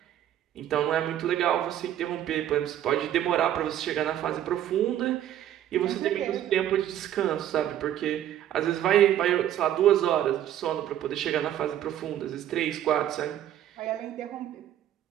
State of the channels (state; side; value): quieter; left; 11.4 dB